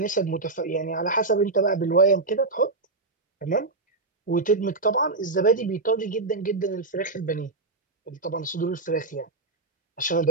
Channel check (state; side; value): quieter; left; 3.5 dB